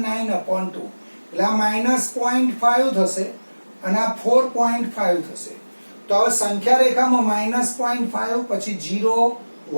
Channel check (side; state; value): both; inverted; correlation -1.00